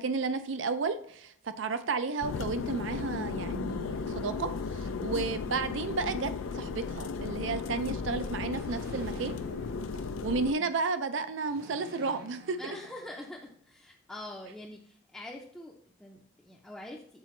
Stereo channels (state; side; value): normal; both; correlation 0.00